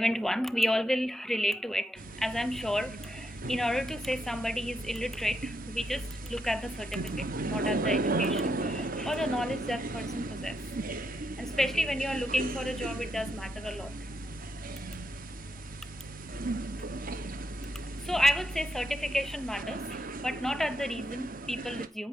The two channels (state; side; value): normal; both; correlation 0.81